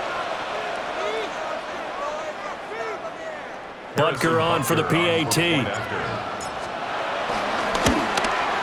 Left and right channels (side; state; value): both; identical; correlation 1.00